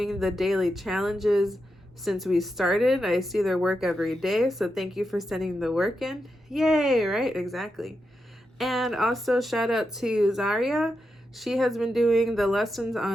the daily challenges since we started. I see their work every day, so thank you for sending the work in. Yay, right? Exactly. And also shout out to Zaria. She has been doing the lessons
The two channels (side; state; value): both; normal; correlation 0.87